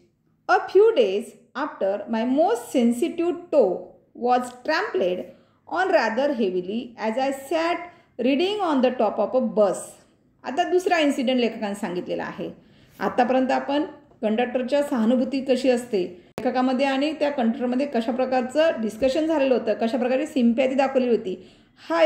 A few days after my most sensitive toe was trampled on rather heavily as I sat reading on the top of a bus. आता दुसरा इन्सिडेंट लेखकाने सांगितलेला आहे. आतापर्यंत आपण कंडक्टरच्या सहानुभूती कशी असते लेखकामध्ये आणि त्या कंडक्टरमध्ये कशा प्रकारचं डिस्कशन झालेलं होतं, कशा प्रकारे सिम्पॅथी दाखवली होती, हा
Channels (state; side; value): identical; both; correlation 1.00